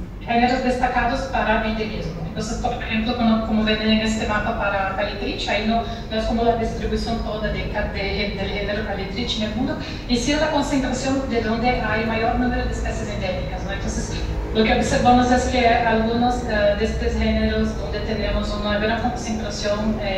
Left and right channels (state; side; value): identical; both; correlation 1.00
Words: géneros destacados para endemismo. Entonces, por ejemplo, como ven en este mapa para Calitrich, ahí no es como la distribución toda del género Calitrich en el mundo, y sí la concentración de donde hay mayor número de especies endémicas, ¿no? Entonces, lo que observamos es que algunos de estos géneros donde tenemos una gran concentración